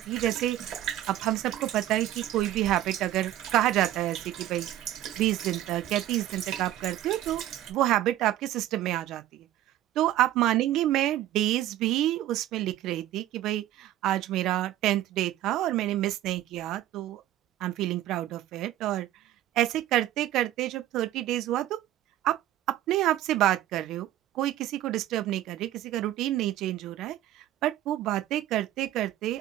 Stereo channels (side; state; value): left; quieter; 13.5 dB